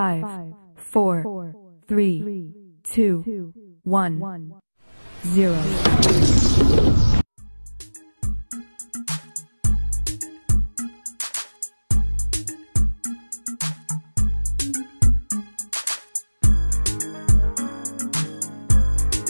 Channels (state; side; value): inverted; both; correlation -1.00